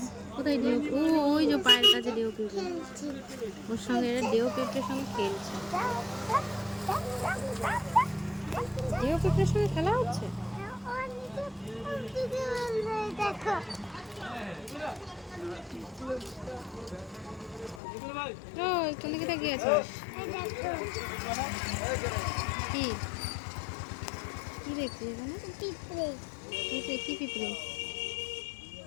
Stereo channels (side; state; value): right; drops out; at 17.8 s